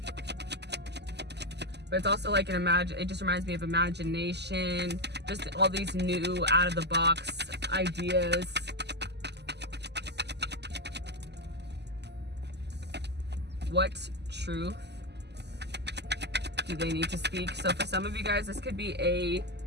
But it's also like it just reminds me of imagination. Just all these new out of the box ideas. What truth do they need to speak? So for some of you guys, this could be a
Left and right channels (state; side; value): late; left; 0.50 ms